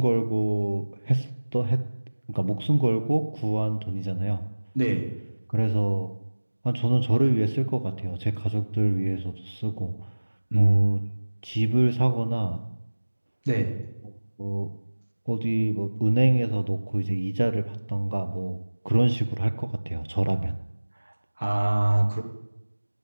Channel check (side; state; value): both; inverted; correlation -1.00